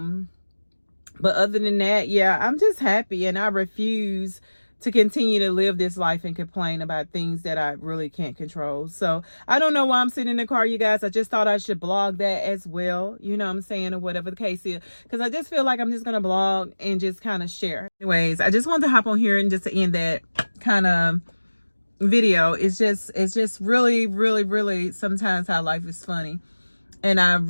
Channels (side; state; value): both; inverted; correlation -1.00